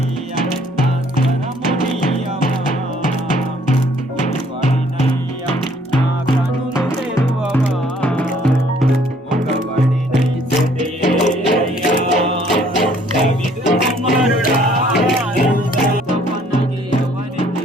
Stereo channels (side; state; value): both; normal; correlation 0.61